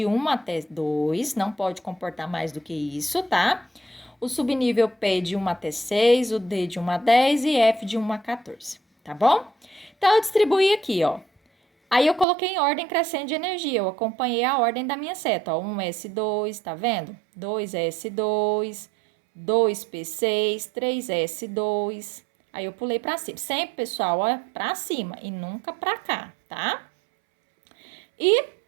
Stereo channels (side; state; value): left; drops out; at 12.2 s